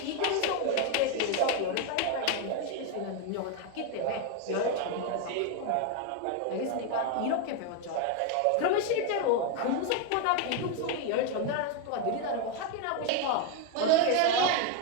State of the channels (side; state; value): both; different; correlation 0.01